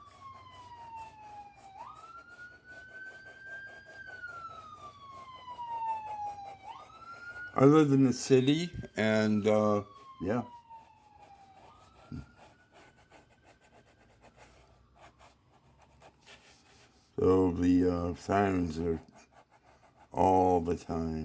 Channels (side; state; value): both; identical; correlation 1.00